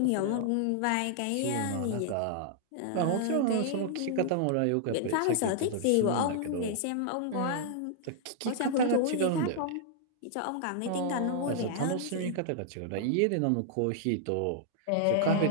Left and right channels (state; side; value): different; both; correlation -0.01